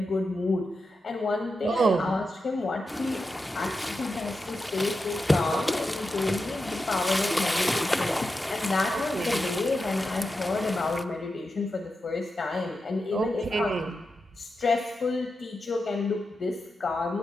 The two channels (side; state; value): both; normal; correlation 0.89